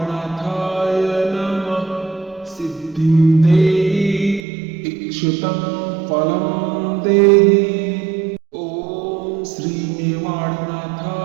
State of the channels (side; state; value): left; drops out; at 4.4 s